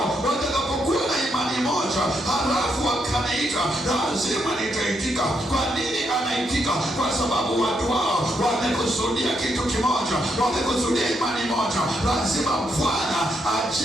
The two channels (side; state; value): both; normal; correlation 0.78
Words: watakapokuwa na imani moja, halafu wakaniita, lazima nitaitika. Kwa nini anaitika? Kwa sababu watu hao wamekusudia kitu kimoja, wamekusudia imani moja. Lazima Bwana